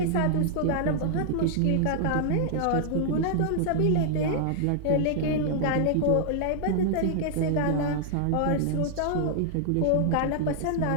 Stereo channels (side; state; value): both; different; correlation -0.01